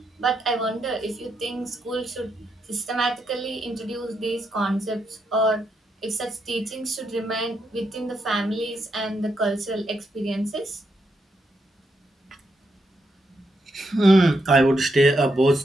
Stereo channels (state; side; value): normal; both; correlation 0.81